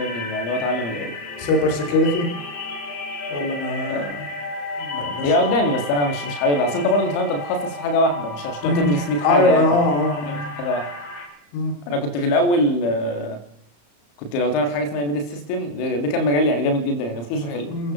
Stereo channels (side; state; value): right; late; 34 ms